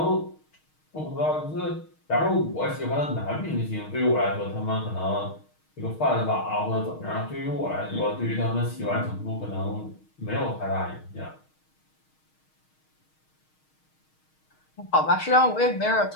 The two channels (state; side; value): late; right; 6.4 ms